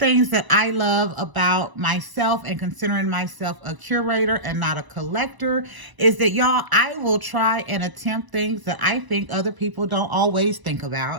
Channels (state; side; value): late; left; 1.0 ms